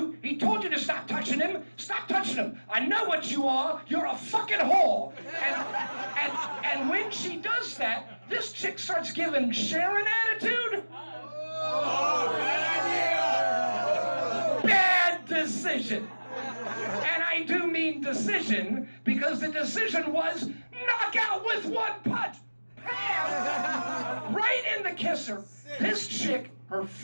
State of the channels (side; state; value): both; inverted; correlation -1.00